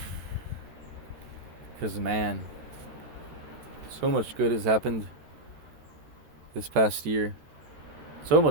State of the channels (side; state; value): left; late; 13 ms